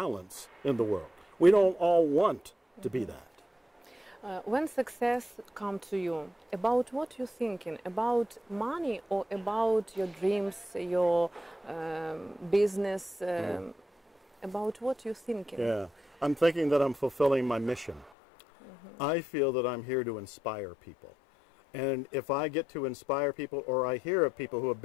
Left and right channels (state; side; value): drops out; right; at 18.1 s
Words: in the world. We don't all want to be that. When success comes to you, about what you're thinking? About money or about your dreams, your business? About what you're thinking? Yeah, I'm thinking that I'm fulfilling my mission. I feel that I'm here to inspire people. And if I get to inspire people or I hear of people who have